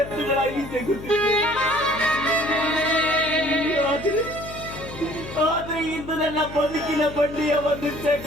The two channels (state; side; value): noise; left; hum, 13 dB below the sound